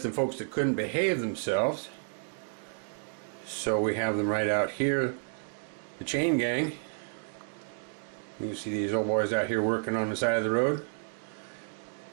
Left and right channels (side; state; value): left; silent; digital silence